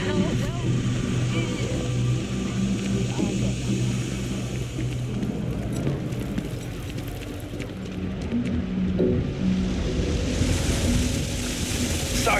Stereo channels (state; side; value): identical; both; correlation 1.00